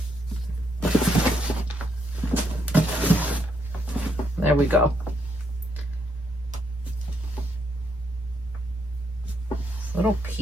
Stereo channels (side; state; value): both; normal; correlation 0.76